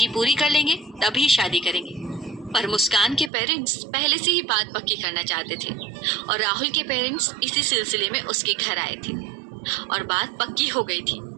पूरी कर लेंगे तभी शादी करेंगे। पर मुस्कान के पेरेंट्स पहले से ही बात पक्की करना चाहते थे और राहुल के पेरेंट्स इसी सिलसिले में उसके घर आए थे और बात पक्की हो गई थी।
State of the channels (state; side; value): drops out; left; at 3.3 s